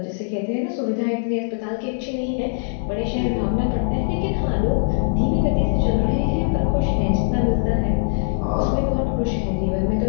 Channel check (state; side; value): silent; right; digital silence